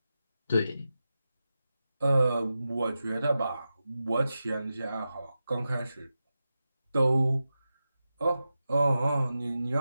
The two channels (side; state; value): both; inverted; correlation -0.92